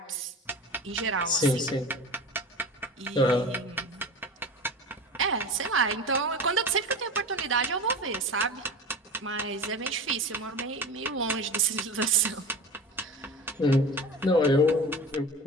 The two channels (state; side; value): normal; both; correlation 0.33